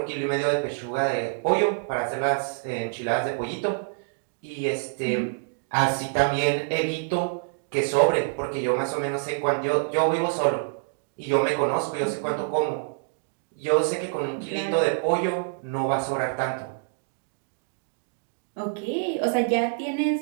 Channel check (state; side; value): silent; left; digital silence